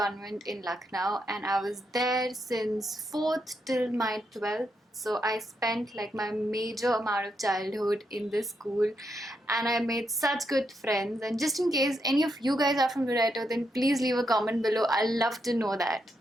in Lucknow, and I was there since 4th till my 12th. So I spent like my major amount of childhood in this school, and I made such good friends. And just in case any of you guys are from Loreto, then please leave a comment below. I'd love to know that.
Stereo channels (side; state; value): both; normal; correlation 0.81